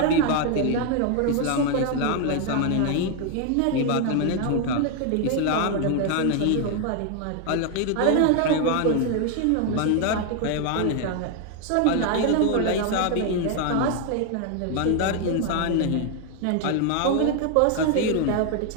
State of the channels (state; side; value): different; both; correlation 0.01